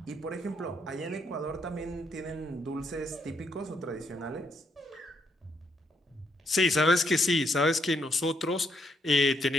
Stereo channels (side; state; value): both; normal; correlation 0.74